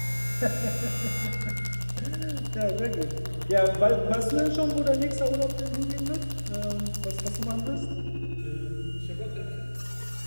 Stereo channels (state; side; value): inverted; both; correlation -1.00